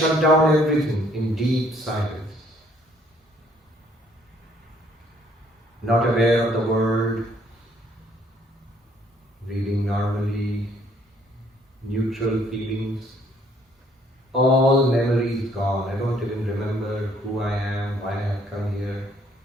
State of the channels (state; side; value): normal; both; correlation 0.64